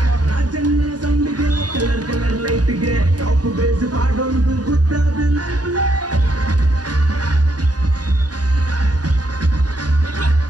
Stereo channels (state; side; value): late; left; 0.69 ms